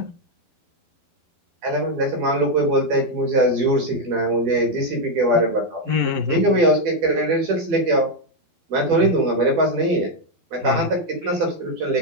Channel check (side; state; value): left; late; 12 ms